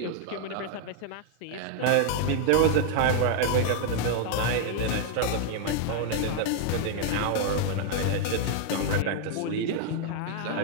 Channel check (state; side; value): different; both; correlation 0.00